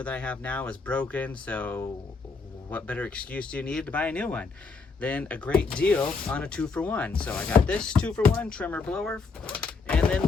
that I have now is broken, so what better excuse do you need to buy a new one than a great deal on a 2-for-1? So I got this 2-for-1 trimmer blower, and then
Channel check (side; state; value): right; quieter; 4.5 dB